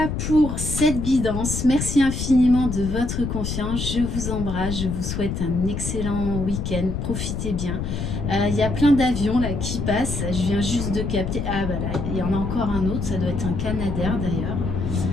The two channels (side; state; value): left; noise; rumble, 3 dB below the sound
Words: pour cette guidance. Merci infiniment de votre confiance. Je vous embrasse. Je vous souhaite un excellent week-end. Profitez bien. Il y a plein d'avions là qui passent. Je viens juste de capter. Ah voilà, il y en a encore un autre. Ça doit être un Canadair d'ailleurs.